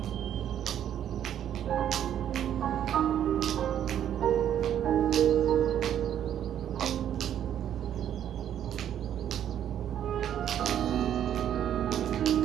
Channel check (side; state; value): left; quieter; 10.2 dB